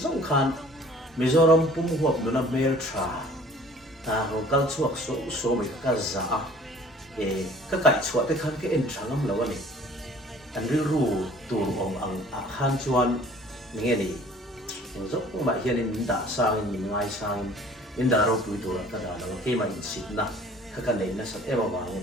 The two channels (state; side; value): normal; both; correlation 0.51